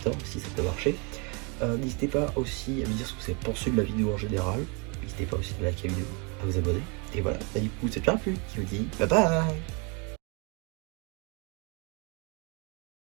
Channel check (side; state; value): left; quieter; 32.8 dB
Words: si ça peut marcher. N'hésitez pas aussi à me dire ce que vous avez pensé de la vidéo en général. N'hésitez pas aussi à liker la vidéo, à vous abonner. Et voilà, du coup c'est déjà plus qui vous dit bye bye.